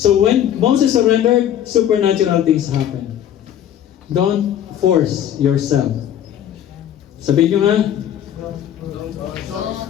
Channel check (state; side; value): quieter; right; 10.5 dB